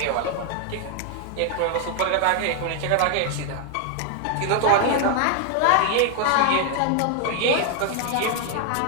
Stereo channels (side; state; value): both; different; correlation 0.00